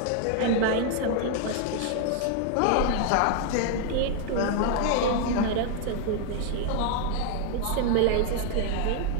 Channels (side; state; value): both; different; correlation 0.00